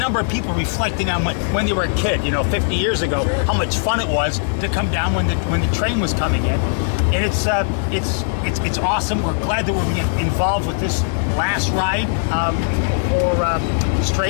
of people reflecting on when they were a kid, 50 years ago, how much fun it was to come down when the train was coming in. And it's awesome. We're glad that we're being involved with this last ride for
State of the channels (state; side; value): silent; right; digital silence